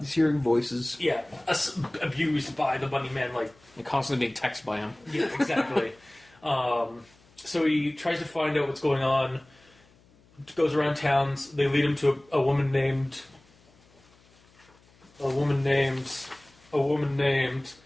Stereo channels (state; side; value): noise; left; hum, 30 dB below the sound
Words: hearing voices. Yeah, abused by the bunny man, like and constantly being texted by him. Yeah, exactly. So he tries to find out what's going on. Goes around towns. They lead him to a woman named Candace. They